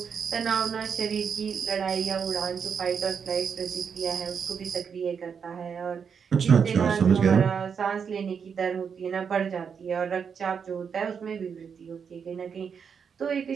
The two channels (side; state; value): left; quieter; 6.6 dB